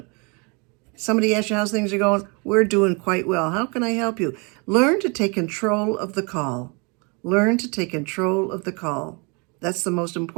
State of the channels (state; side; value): quieter; left; 31.3 dB